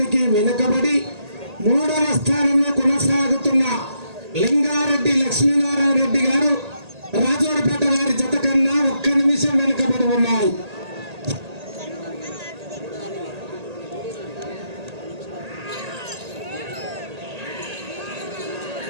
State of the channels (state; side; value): late; left; 1.8 ms